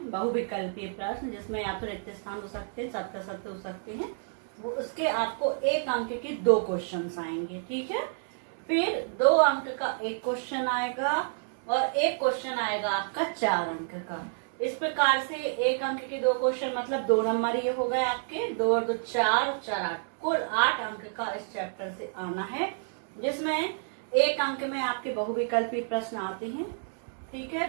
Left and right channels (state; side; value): silent; left; digital silence